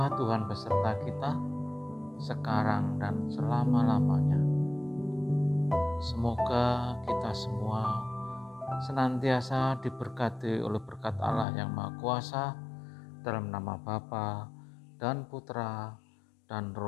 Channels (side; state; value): right; drops out; at 11.5 s